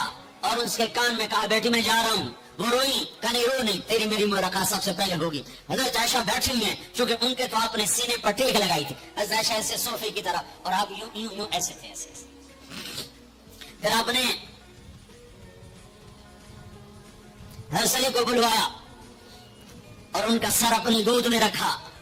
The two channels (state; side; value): identical; both; correlation 1.00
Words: اور اس کے کان میں کہا بیٹی میں جا رہا ہوں. وہ روئی، کہنے رو نہیں، تیری میری ملاقات سب سے پہلے ہوگی. حضرت عائشہ بیٹھی ہیں چونکہ ان کے تو آپ نے سینے پر ٹیک لگائی تھی. حضرت عائشہ ایسے صوفی کی طرح اور آپ یوں یوں یوں ایسے تھے ایسے. پھر آپ نے حضرت علی کو بلوایا اور ان کا سر اپنی گود میں رکھا